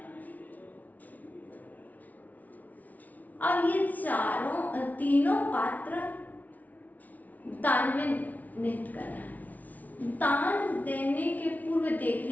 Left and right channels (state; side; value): late; right; 0.075 ms